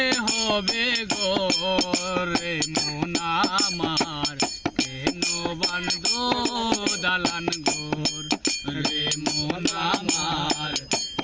হবে ঘর রে মন আমার, কেন বাঁধো দালান ঘর রে মন আমার,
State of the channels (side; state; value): both; identical; correlation 1.00